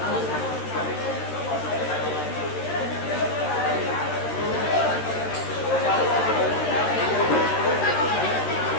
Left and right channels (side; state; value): right; late; 13 ms